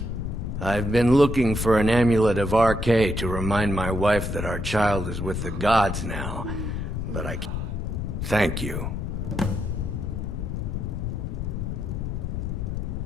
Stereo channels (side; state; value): left; noise; rumble, 3 dB below the sound